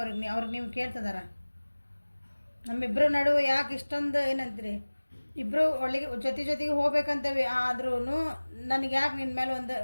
ಅವ್ರಿಗೆ ನೀವು ಕೇಳ್ತಿದಾರ. ನಮ್ಮಿಬ್ಬರು ನಡುವೆ ಯಾಕೆ ಇಷ್ಟೊಂದು ಏನಂತೀರಿ, ಇಬ್ಬರು ಒಳ್ಳೆಗೆ ಜೊತೆಗೆ ಹೋಗ್ಬೇಕಂತೇವೆ, ಆದ್ರೂ ನನಗೆ ಯಾಕೆ ನಿನ್ನ ಮೇಲೆ ಒಂದು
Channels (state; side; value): inverted; both; correlation -1.00